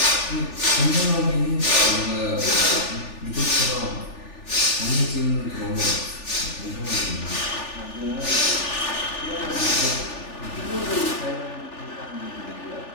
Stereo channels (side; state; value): right; late; 3.4 ms